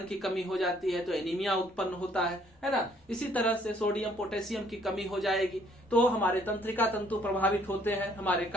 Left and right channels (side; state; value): both; normal; correlation 0.63